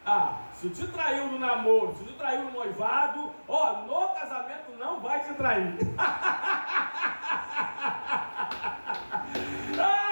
Se te traiu no namoro, se te traiu no noivado, no casamento não vai te trair.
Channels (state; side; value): inverted; both; correlation -1.00